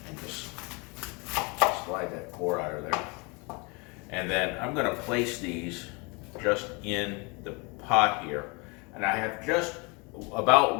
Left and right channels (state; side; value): quieter; right; 29.6 dB